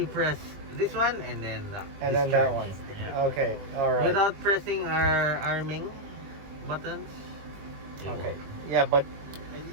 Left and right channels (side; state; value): left; late; 20 ms